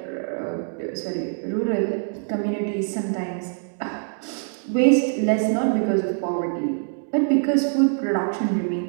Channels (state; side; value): silent; left; 63 dB below the other